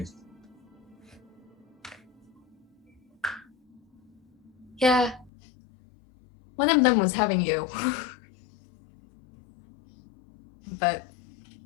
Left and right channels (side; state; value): right; drops out; at 5.3 s